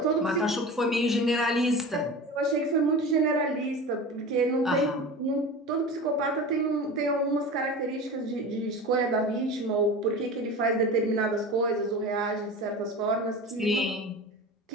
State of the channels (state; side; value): normal; both; correlation 0.32